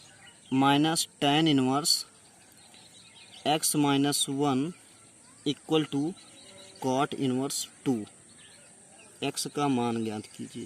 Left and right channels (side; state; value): both; identical; correlation 1.00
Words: minus tan inverse x minus 1 equal to cot inverse 2, x का मान ज्ञात